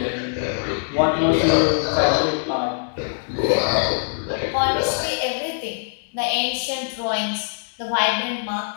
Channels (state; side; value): silent; right; 64 dB below the other